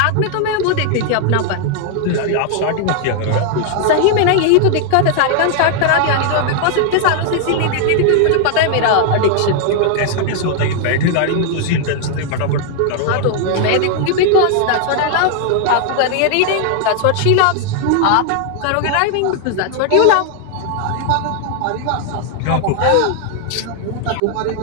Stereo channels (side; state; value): both; different; correlation 0.00